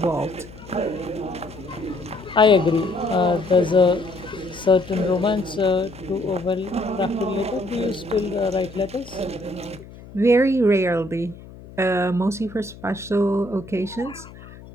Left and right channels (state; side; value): noise; left; hum, 18 dB below the sound